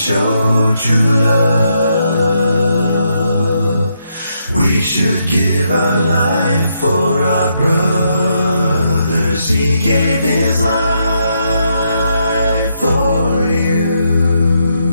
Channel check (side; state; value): both; inverted; correlation -0.78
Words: true love. We should give our life for our brothers. He gave his life for